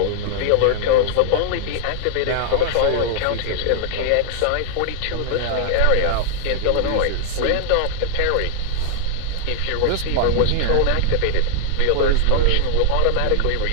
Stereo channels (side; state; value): both; different; correlation 0.00